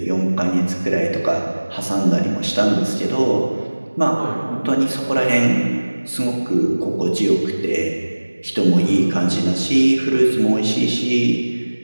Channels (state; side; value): inverted; both; correlation -1.00